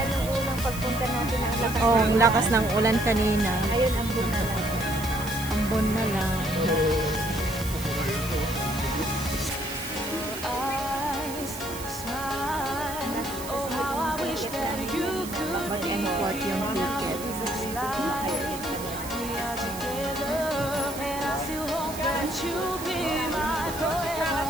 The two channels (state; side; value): noise; right; hiss, 11 dB below the sound